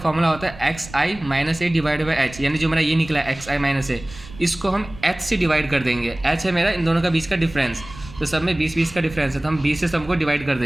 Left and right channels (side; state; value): right; noise; rumble, 17 dB below the sound